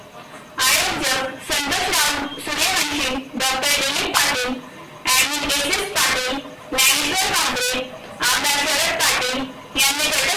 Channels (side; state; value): both; identical; correlation 1.00